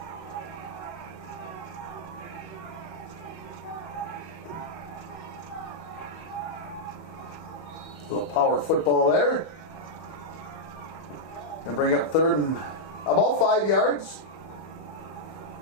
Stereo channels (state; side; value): late; right; 31 ms